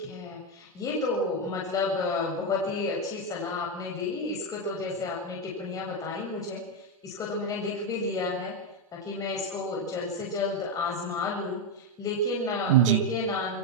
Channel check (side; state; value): both; normal; correlation 0.07